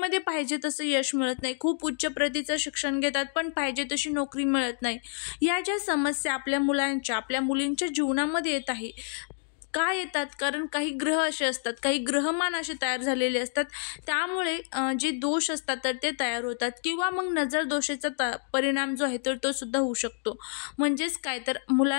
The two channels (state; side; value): silent; right; digital silence